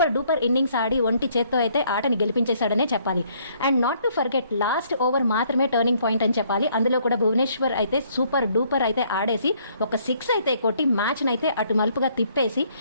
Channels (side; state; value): both; inverted; correlation -0.65